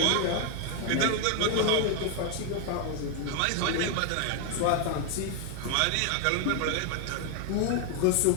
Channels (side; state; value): both; different; correlation 0.00